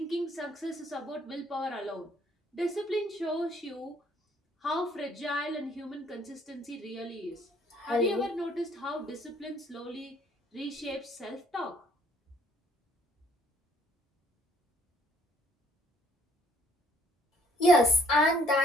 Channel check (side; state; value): both; normal; correlation 0.62